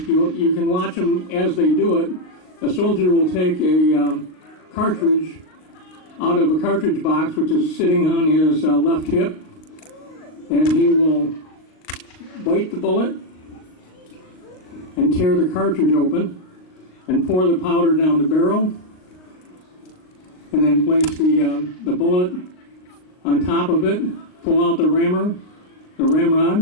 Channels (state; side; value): late; right; 38 ms